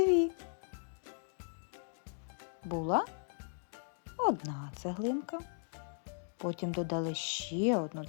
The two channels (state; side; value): silent; right; digital silence